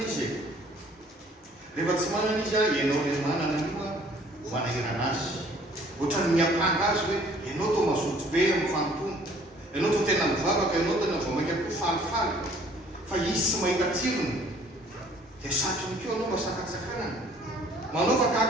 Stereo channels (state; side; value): normal; both; correlation 0.57